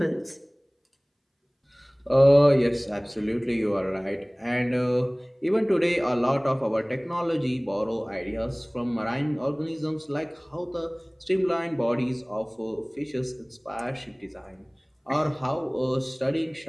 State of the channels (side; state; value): both; identical; correlation 1.00